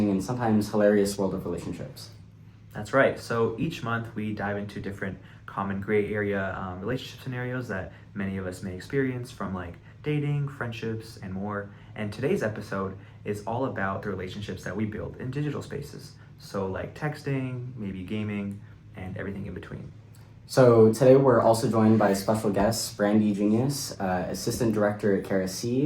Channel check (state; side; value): identical; both; correlation 1.00